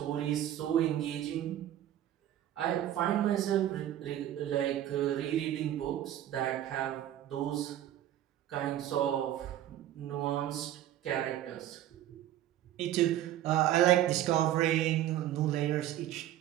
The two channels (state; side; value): quieter; left; 12.4 dB